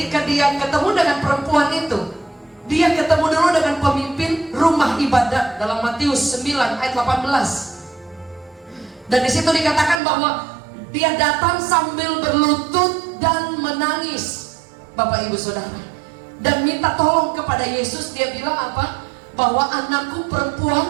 dia ketemu dengan perempuan itu, dia ketemu dulu dengan pemimpin rumah ibadat dalam Matius 9 ayat 18. Dan di situ dikatakan bahwa dia datang sambil berlutut dan menangis, Bapak Ibu Saudara, dan minta tolong kepada Yesus. Dia bilang apa? Bahwa anakku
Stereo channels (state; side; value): drops out; left; at 10.0 s